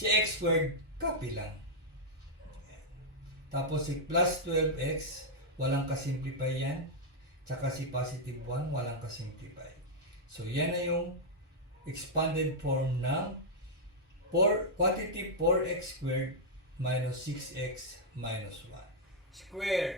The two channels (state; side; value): normal; both; correlation -0.05